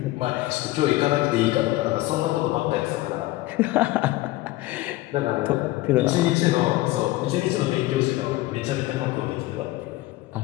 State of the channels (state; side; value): quieter; right; 18.1 dB